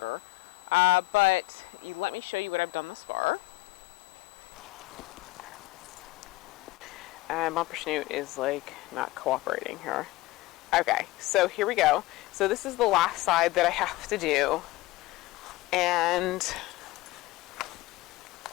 But let me show you what I've done thus far. And Bumper Snoot is like not cooperating here. Okay, so here we go. So this is the last side that I have to do. And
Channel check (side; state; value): right; quieter; 19.4 dB